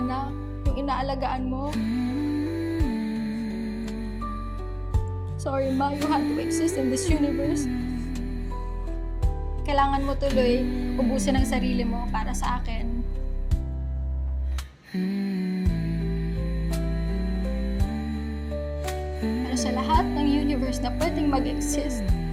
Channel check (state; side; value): identical; both; correlation 1.00